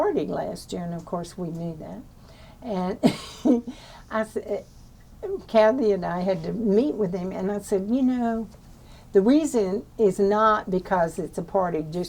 last year, and of course we knew that. And I said, Kathy and I had to meet with him, and I said, you know, the reason is not because it's a party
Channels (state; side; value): identical; both; correlation 1.00